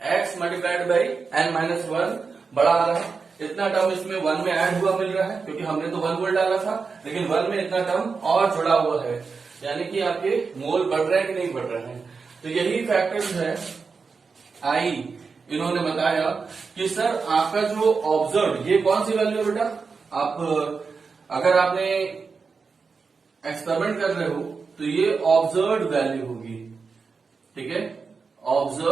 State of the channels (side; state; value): left; quieter; 4.9 dB